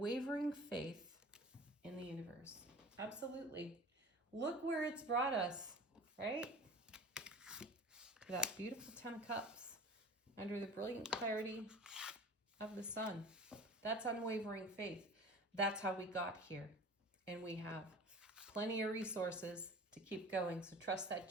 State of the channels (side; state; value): both; normal; correlation 0.40